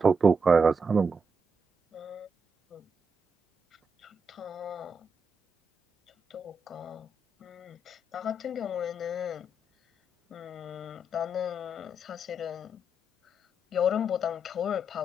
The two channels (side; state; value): both; normal; correlation 0.81